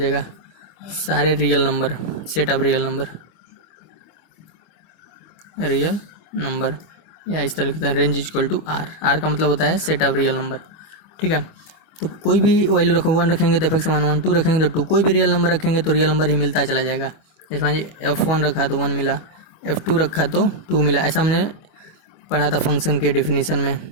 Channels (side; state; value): right; late; 25 ms